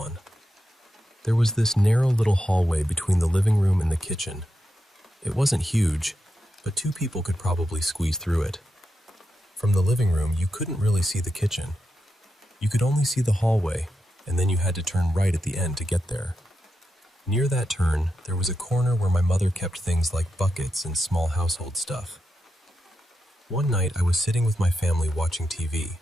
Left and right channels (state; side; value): normal; both; correlation 0.87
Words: There was this narrow little hallway between the living room and the kitchen. It wasn't huge, but 2 people could probably squeeze through it. From the living room, you couldn't really see the kitchen. You could only see the hallway, and then you had to turn right at the end to get there. Near that turn, there was a corner where my mother kept things like buckets and small household stuff. One night, I was sitting with my family watching TV.